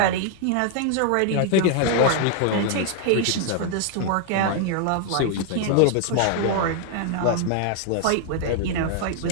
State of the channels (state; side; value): different; both; correlation 0.00